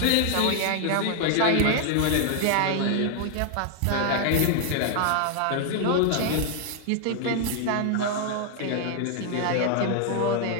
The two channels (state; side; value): different; both; correlation 0.00